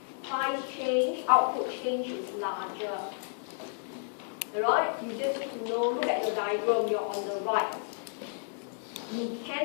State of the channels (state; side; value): silent; right; digital silence